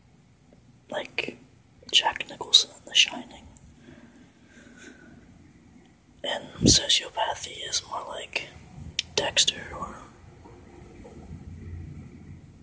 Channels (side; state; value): both; identical; correlation 1.00